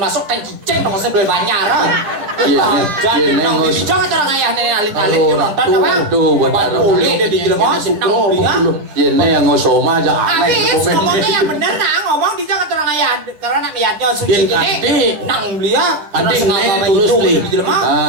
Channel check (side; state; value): left; late; 9.9 ms